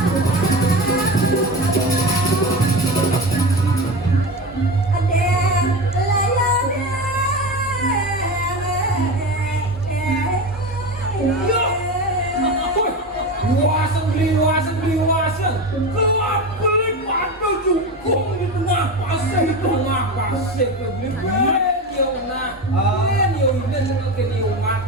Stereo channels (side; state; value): both; normal; correlation 0.24